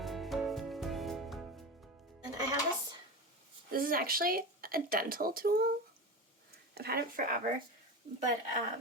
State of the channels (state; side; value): normal; both; correlation 0.25